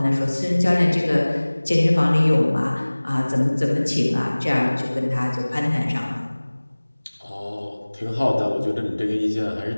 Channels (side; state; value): both; inverted; correlation -1.00